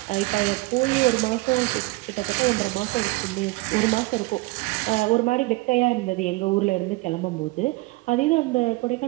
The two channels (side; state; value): left; quieter; 22.2 dB